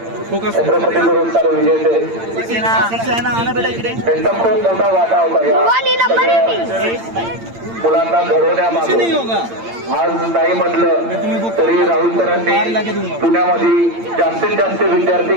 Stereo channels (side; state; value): left; late; 8.8 ms